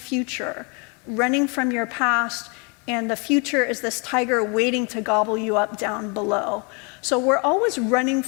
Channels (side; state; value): right; quieter; 33.2 dB